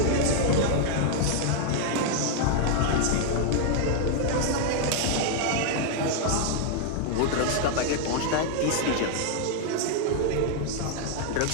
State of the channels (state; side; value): different; both; correlation 0.00